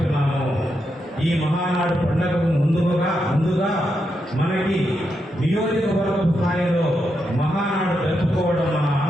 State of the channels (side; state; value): both; normal; correlation 0.84